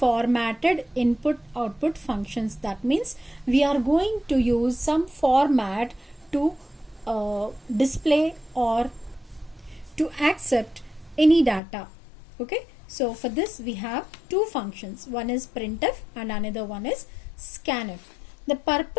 input output functions. That means we are going to use some format to display or to accept any data. Okay, so for this we have two functions. One is printf and another one is scanf. The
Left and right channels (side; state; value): right; drops out; at 11.6 s